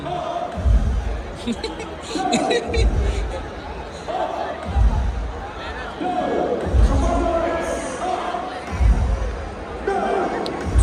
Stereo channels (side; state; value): both; identical; correlation 1.00